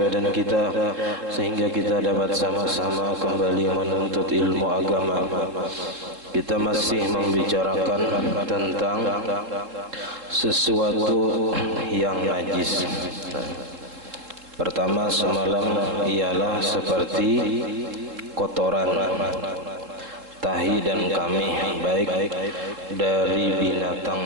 badan kita sehingga kita dapat sama-sama kembali menuntut ilmu agama. Kita masih membicarakan tentang sesuatu yang najis. Pertama semalam ialah seperti kotoran, tahi dan kamih, baik dari binatang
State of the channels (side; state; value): left; late; 3.7 ms